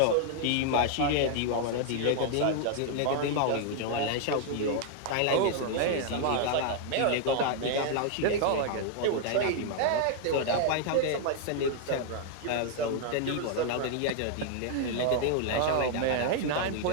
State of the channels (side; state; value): both; different; correlation 0.00